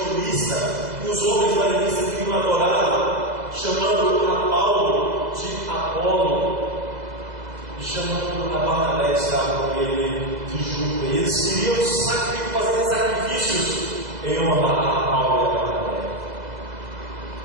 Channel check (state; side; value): late; left; 2.0 ms